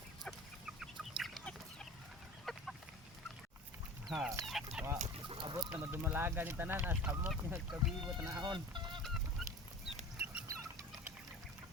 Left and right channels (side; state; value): both; normal; correlation 0.37